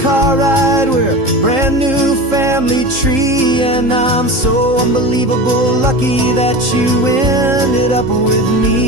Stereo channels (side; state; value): left; late; 3.8 ms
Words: car ride, we're a brand new family tree, and I'm so unbelievable lucky that you ended up with